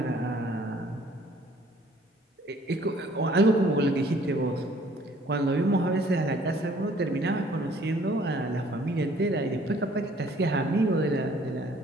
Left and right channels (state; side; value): normal; both; correlation 0.58